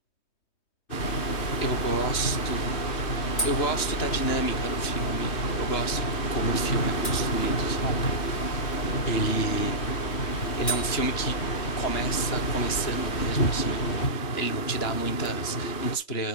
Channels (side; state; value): right; late; 3.2 ms